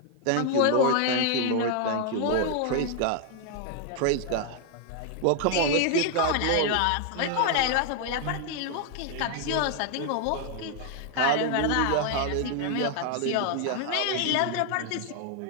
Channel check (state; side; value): different; both; correlation 0.00